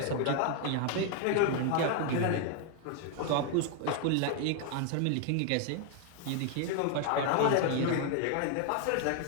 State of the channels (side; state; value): both; different; correlation 0.00